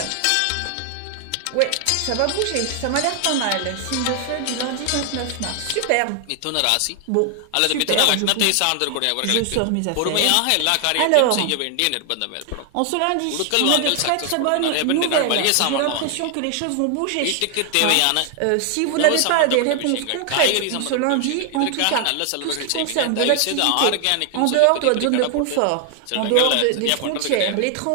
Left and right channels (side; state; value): both; different; correlation 0.00